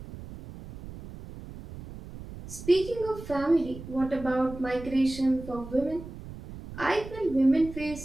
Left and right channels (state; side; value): noise; right; rumble, 13 dB below the sound